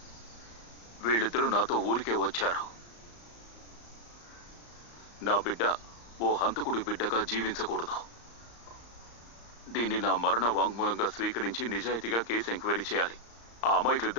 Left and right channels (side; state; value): right; late; 35 ms